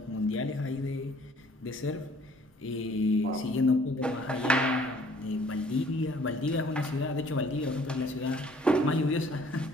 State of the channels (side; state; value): both; normal; correlation 0.58